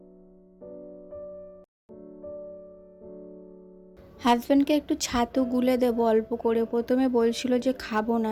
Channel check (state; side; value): identical; both; correlation 1.00